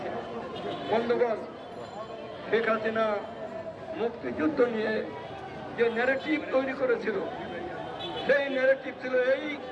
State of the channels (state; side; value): identical; both; correlation 1.00